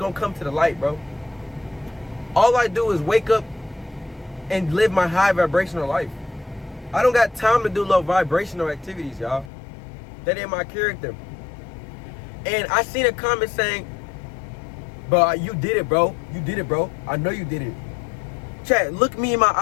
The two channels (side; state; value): right; drops out; at 9.5 s